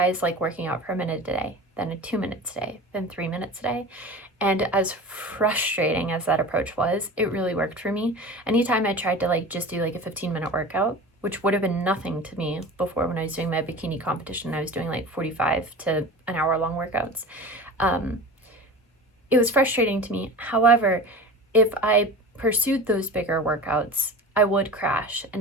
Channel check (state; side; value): normal; both; correlation 0.34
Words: like working out for a minute a day, then 2 minutes a day, then 3 minutes a day. And as frustrating as that approach was, it really worked for me. Anytime I tried to like just do like a 15-minute workout, which would have been nothing to me before when I was doing my bikini competition, I was doing like 45 to an hour long workouts. It was frustrating to me. However, if I pursued those bigger workouts, I would crash,